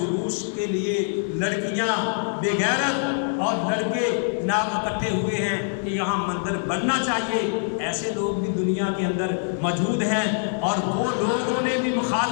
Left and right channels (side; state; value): right; silent; 62 dB below the other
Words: کے لیے لڑکیاں بے غیرت اور لڑکے جناب اکٹھے ہوئے ہیں کہ یہاں مندر بننا چاہیے۔ ایسے لوگ بھی دنیا کے اندر موجود ہیں، اور وہ لوگوں نے بھی